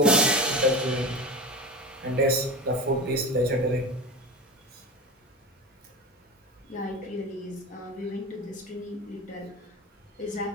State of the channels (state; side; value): normal; both; correlation 0.27